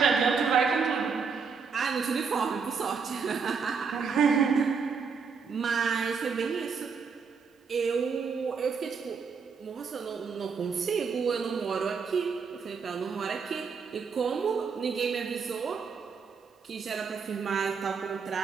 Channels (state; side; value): quieter; left; 5.7 dB